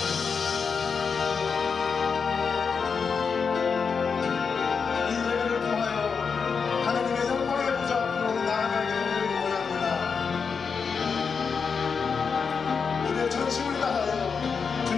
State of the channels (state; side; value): quieter; right; 5.7 dB